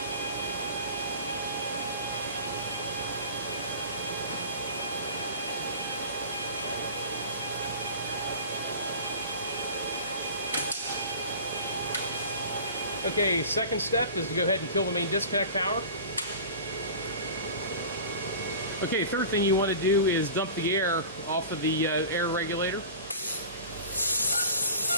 Okay, second step is to go ahead and kill the main disconnect power. Okay, third thing you want to do is dump the air off of the air regulator.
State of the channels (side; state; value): both; inverted; correlation -0.37